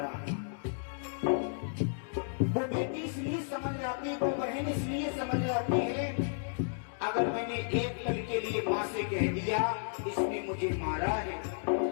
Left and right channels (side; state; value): right; silent; digital silence